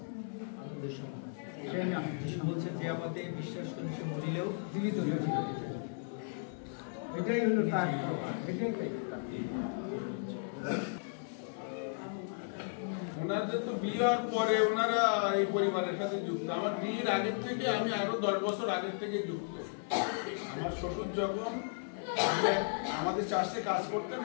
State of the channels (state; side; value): silent; right; 54 dB below the other